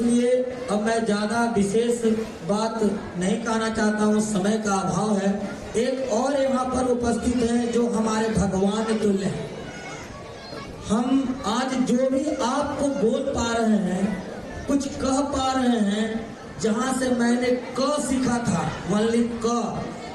अब मैं ज्यादा विशेष बात नहीं कहना चाहता हूँ, समय का अभाव है। एक और यहाँ पर उपस्थित है जो हमारे भगवान तुल्य हैं। हम आज जो भी आपको बोल पा रहे हैं, कुछ कह पा रहे हैं, जहाँ से मैंने क सीखा था, वनली क,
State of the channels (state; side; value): identical; both; correlation 1.00